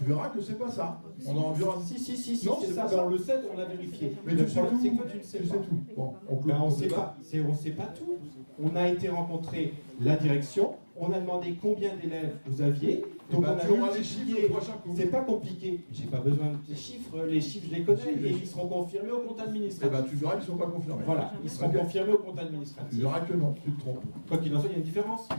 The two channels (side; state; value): both; inverted; correlation -1.00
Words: verras que c'est pas ça. On en verra. Si, Non, c'est c'est ça. pas Ben, ça. on le sait, on l'a vérifié. Mais le tu sais problème, tout. c'est que toi, tu ne sais Tu pas. sais tout. Bon, Ben, on sait pas. On sait pas tout. On a été rencontrer la direction. On a demandé combien d'élèves vous aviez. Donc ben, on a tu auras les chiffres multiplié. le prochain coup. C'est pas compliqué. J'ai pas besoin des chiffres. Les chiffres, je les connais Si, et les ils seront confirmés au compte Eh administratif. ben, tu verras qu'ils ne sont pas confirmés. Voilà, ils seront confirmés au compte Tu administratif. verras que non, tu te trompes. Quoi qu'il en soit, il y a une différence.